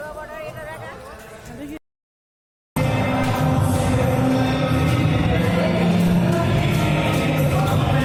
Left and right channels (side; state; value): both; identical; correlation 1.00